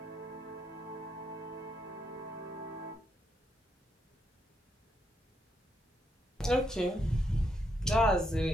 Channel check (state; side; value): normal; both; correlation 0.78